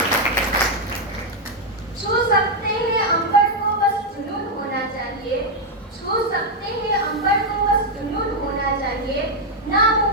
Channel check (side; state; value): both; normal; correlation 0.01